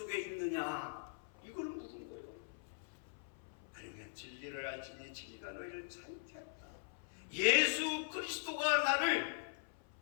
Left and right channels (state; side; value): silent; right; 50 dB below the other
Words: 있느냐? 이걸 묻은 거예요. 아니면 진리를 알지니 진리가 너희를 자유케 한다. 예수 그리스도가 나를